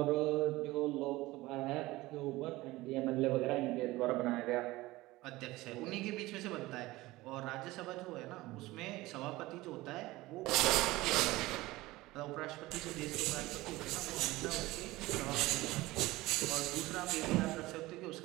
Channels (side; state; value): left; quieter; 19.2 dB